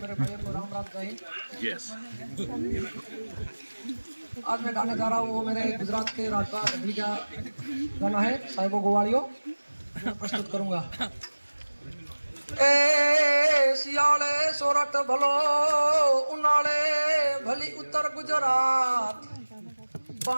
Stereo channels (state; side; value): inverted; both; correlation -1.00